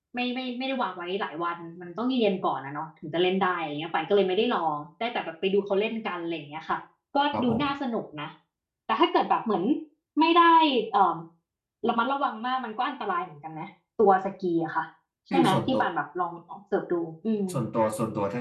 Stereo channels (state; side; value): identical; both; correlation 1.00